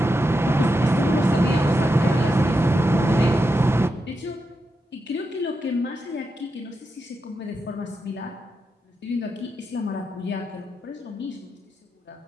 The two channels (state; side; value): normal; both; correlation 0.86